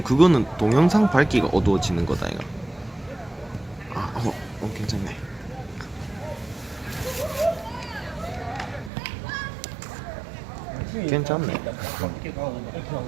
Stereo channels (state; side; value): drops out; left; at 8.9 s